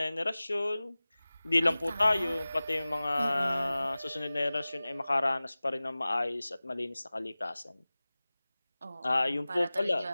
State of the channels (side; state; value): both; inverted; correlation -0.98